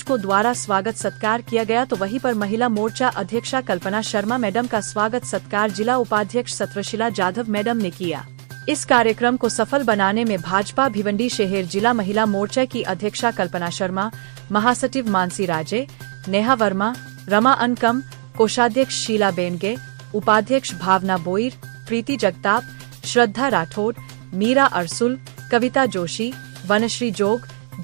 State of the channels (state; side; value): silent; left; digital silence